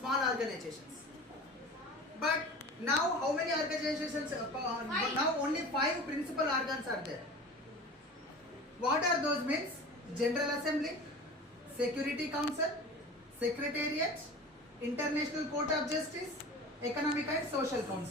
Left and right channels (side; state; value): both; normal; correlation 0.36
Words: organizations. But now how many organizations? Now only 5 principal organs are there. What are those means? General Assembly, Security Council, Secretariat, International Court of Justice, Economic and Social